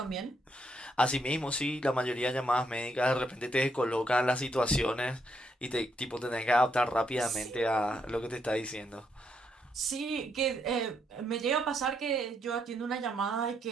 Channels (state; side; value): normal; both; correlation 0.76